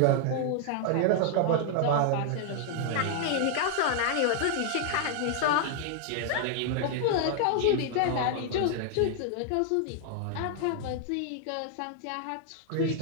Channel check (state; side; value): different; both; correlation 0.00